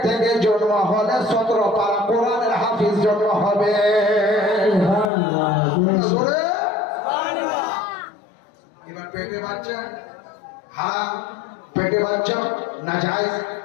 থেকে জন্ম হলে 17 পারা কোরআনের হাফিজ জন্ম হবে। এবার পেটে বাচ্চা হারাম, পেটে বাচ্চা নাজায়েজ,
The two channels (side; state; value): right; drops out; at 5.1 s